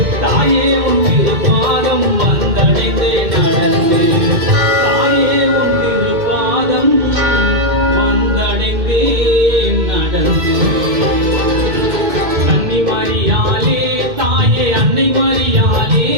தாயே உன் திருப்பாதம் வந்தடைந்தே நடந்து, தாயே உன் திருப்பாதம் வந்தடைந்தே நடந்து. கன்னி மரியாளே தாயே அன்னை மரியாளே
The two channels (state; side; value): late; left; 2.1 ms